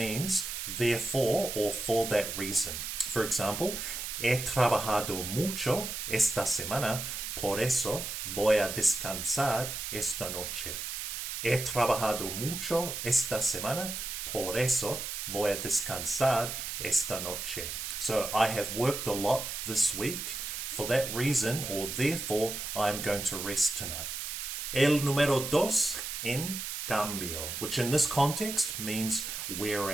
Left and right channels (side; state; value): right; noise; hiss, 5 dB below the sound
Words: therefore or for that reason. For example, he trabajado mucho esta semana, por eso voy a descansar esta noche. He trabajado mucho esta semana, por eso voy a descansar esta noche. So I have worked a lot this week. For that reason, or therefore, I'm going to rest tonight. El número dos, en cambio, which in this context means